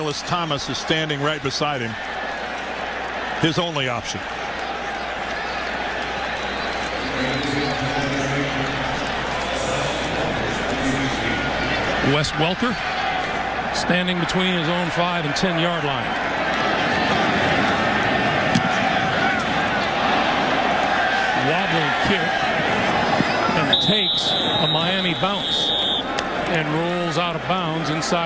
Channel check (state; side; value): identical; both; correlation 1.00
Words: Thomas is standing right beside him, his only option. Wes Welker standing between his own 5 and 10 yard line. Wobbling kick and takes a Miami bounce and rolls out of bounds